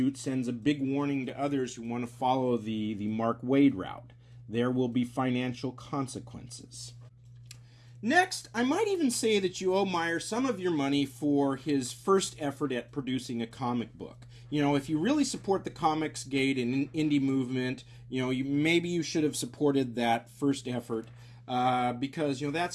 sends a big warning to others who want to follow the Mark Waid route. There will be financial consequences. Next, I might even say that you owe Meyer some of your money for his first effort at producing a comic book. If you really support the Comicsgate and indie movement, maybe you should have supported that first effort because,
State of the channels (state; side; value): identical; both; correlation 1.00